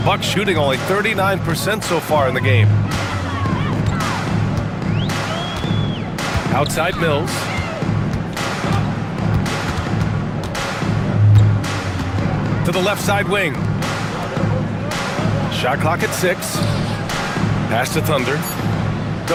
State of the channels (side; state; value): both; identical; correlation 1.00